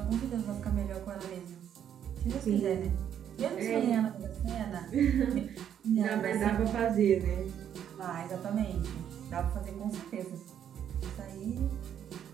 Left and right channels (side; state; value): left; quieter; 9.4 dB